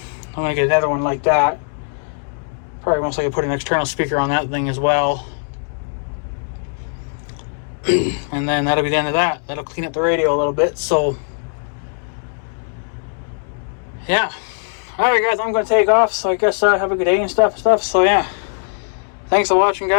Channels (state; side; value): silent; right; digital silence